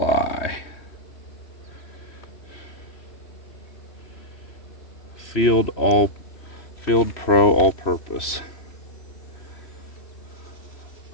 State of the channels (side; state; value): right; late; 3.1 ms